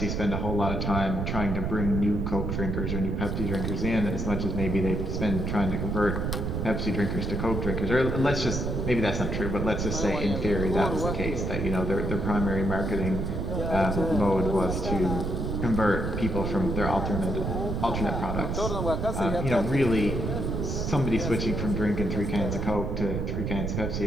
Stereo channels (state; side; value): noise; right; rumble, 1 dB below the sound